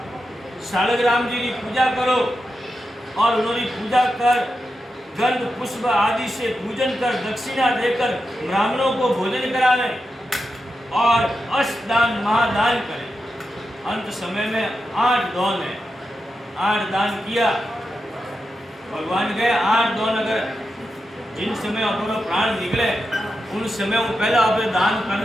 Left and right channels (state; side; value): normal; both; correlation 0.89